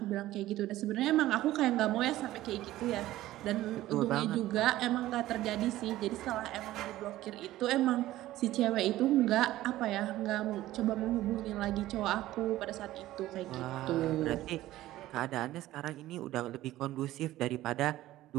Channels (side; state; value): left; quieter; 15.4 dB